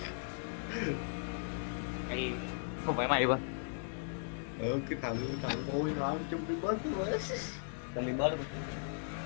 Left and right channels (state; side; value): silent; right; digital silence